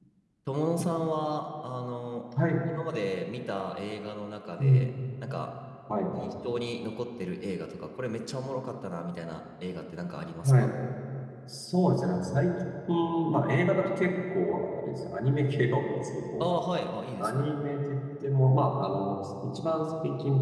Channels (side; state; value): both; identical; correlation 1.00